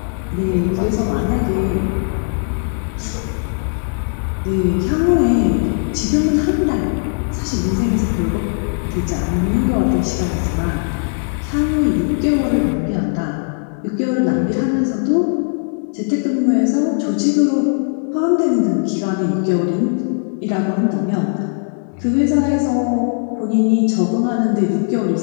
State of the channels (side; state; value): right; silent; 63 dB below the other